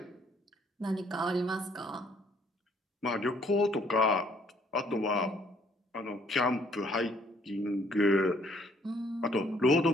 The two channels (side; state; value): both; normal; correlation 0.63